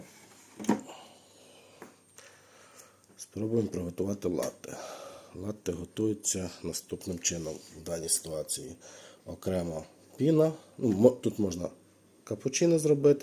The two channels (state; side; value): identical; both; correlation 1.00